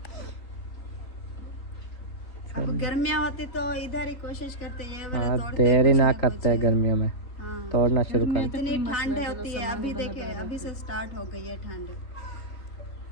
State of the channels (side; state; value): right; late; 3.6 ms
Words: अब गर्मियाँ होती तो इधर ही कोशिश करते ये वाले हाँ तोड़ते देरी कुछ ना कुछ। करते हैं गर्मियों में, हाँ। तोड़ना शुरू कर। इतनी ठंड होती है, अभी देखे अभी से स्टार्ट हो गई है ठंड।